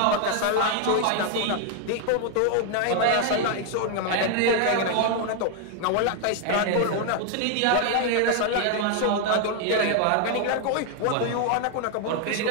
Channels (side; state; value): both; different; correlation 0.00